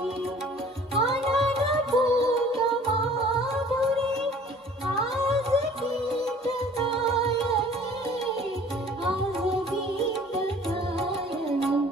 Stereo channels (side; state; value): both; normal; correlation 0.51